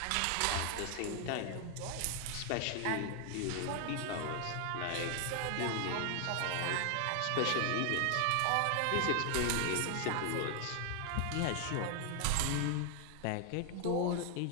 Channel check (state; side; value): different; both; correlation 0.00